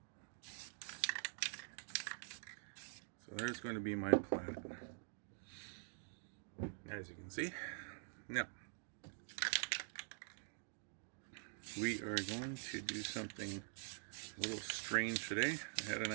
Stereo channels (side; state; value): left; silent; digital silence